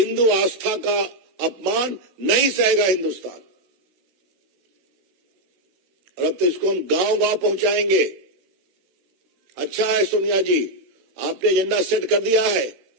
आस्था का अपमान नहीं सहेगा हिंदुस्तान। और अब तो इसको हम गांव गांव पहुंचाएंगे। अच्छा है सोनिया जी, आपने एजेंडा सेट कर दिया है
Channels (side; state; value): left; late; 16 ms